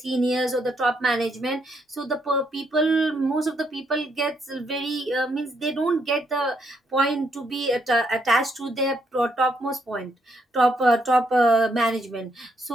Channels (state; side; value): normal; both; correlation 0.75